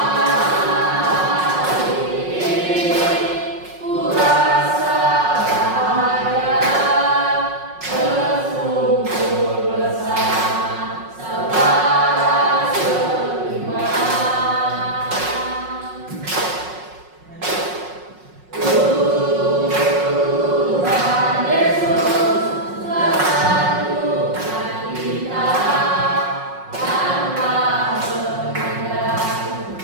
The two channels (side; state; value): left; late; 5.5 ms